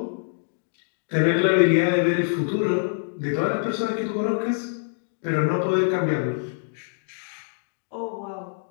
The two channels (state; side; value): silent; right; digital silence